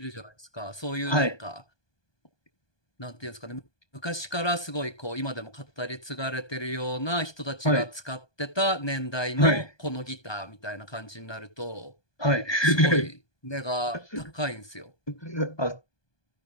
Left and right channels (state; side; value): late; right; 1.2 ms